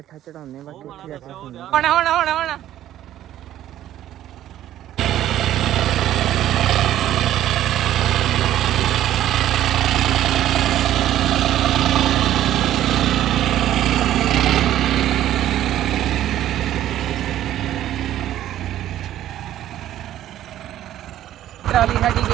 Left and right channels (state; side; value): quieter; left; 12.6 dB